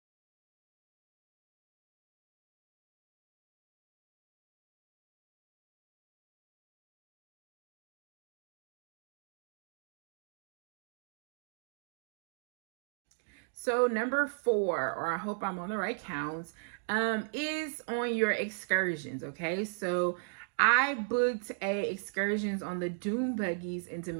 So number 4, or I hope I'm on the right counts, is on your excursions. Okay, so I booked excursions on the dune buggies in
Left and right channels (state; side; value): silent; left; digital silence